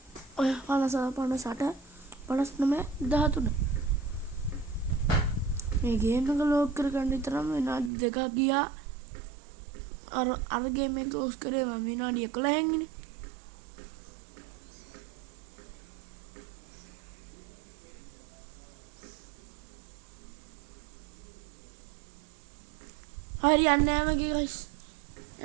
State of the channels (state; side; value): drops out; left; at 7.9 s